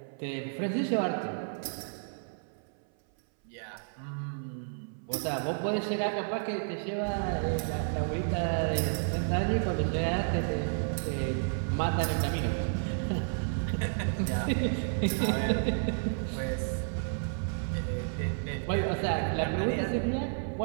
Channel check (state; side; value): silent; left; 57 dB below the other